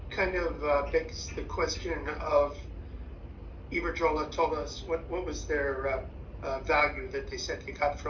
kind of begs the question of Iberdrola told us what was their value that they said they got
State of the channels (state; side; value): identical; both; correlation 1.00